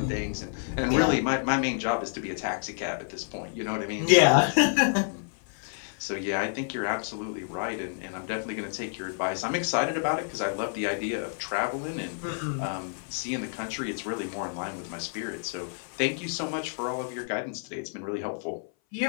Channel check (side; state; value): right; silent; 57 dB below the other